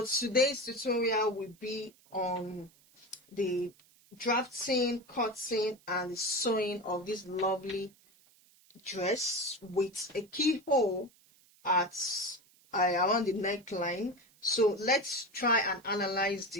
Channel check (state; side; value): noise; right; hiss, 30 dB below the sound